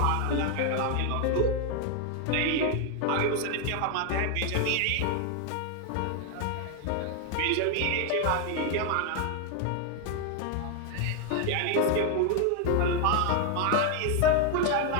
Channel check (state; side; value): different; both; correlation 0.00